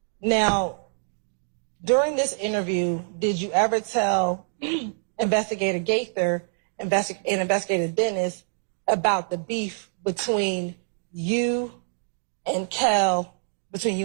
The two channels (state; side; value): silent; left; digital silence